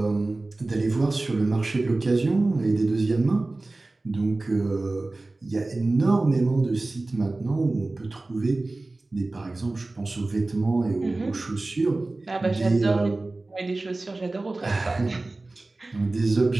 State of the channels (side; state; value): left; quieter; 3.1 dB